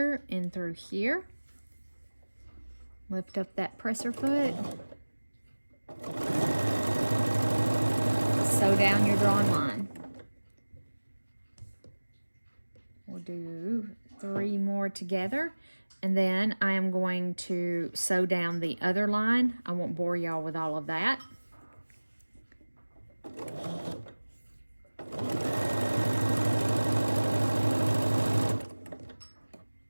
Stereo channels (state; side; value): inverted; both; correlation -1.00